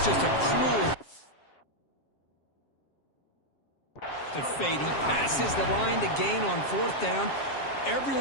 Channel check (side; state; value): right; late; 7.4 ms